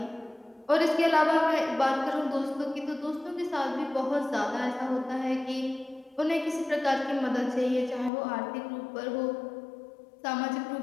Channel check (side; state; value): right; drops out; at 8.1 s